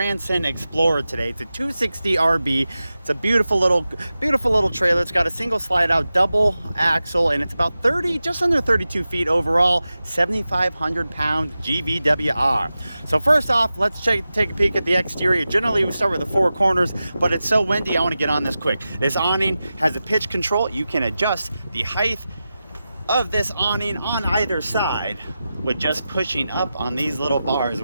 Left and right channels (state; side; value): inverted; both; correlation -0.93